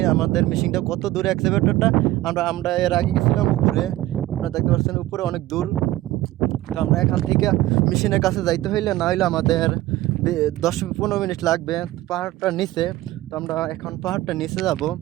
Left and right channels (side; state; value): left; quieter; 16.2 dB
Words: আমাদের মেশিনটা কত দূরে এক্সকাভেটরটা। আমরা এর আগে গেছিলাম উপরে, আপনারা দেখতে পাচ্ছেন উপরে অনেক দূর। তো আমরা এখান থেকে মেশিনের কাছে যাইতে হইলে না হইলে আমাদের 10-15 মিনিট লাগবে পাহাড়টার নিচে। তো আমরা এখন পাহাড়টার নিচে যাব।